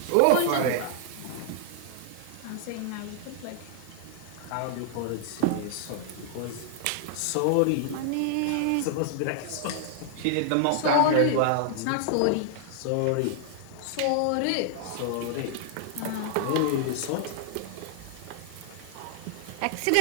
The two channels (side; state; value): both; different; correlation -0.01